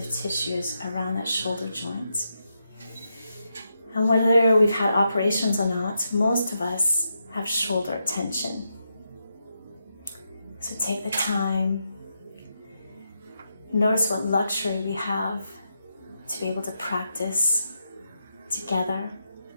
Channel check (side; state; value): both; inverted; correlation -0.84